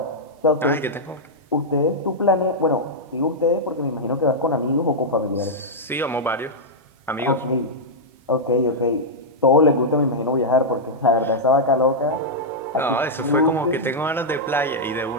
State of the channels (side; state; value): both; normal; correlation -0.07